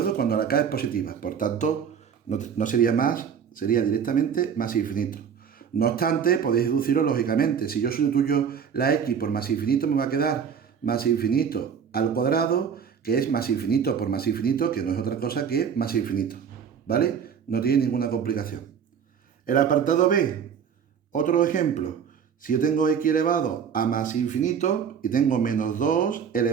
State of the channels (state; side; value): quieter; left; 7.3 dB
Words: Cuando la k es positiva. Por tanto, no sería más, sería directamente más infinito. No obstante, podéis deducirlo lógicamente. Si yo sustituyo la x por más infinito, me va a quedar más infinito al cuadrado, que es más infinito por más infinito, que no es otra cosa que más infinito. ¿Vale? No tiene ninguna complicación. El apartado B, otro ejemplo. Si yo tengo x elevado a más infinito y tengo menos 2